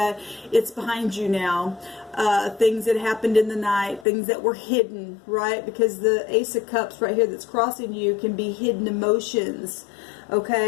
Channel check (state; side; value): drops out; right; at 4.0 s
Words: it's behind you now. Things that happened in the night, things that were hidden, right? Because the Ace of Cups right here that's crossing you can be hidden emotions.